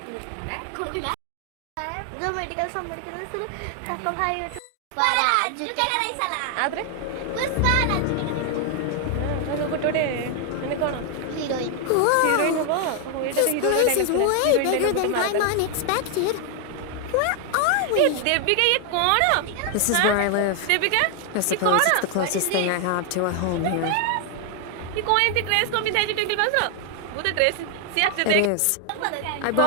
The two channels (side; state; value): both; different; correlation 0.00